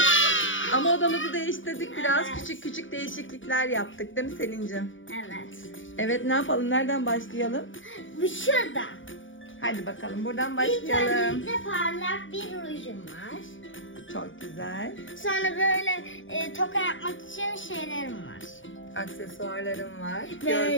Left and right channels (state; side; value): late; right; 0.56 ms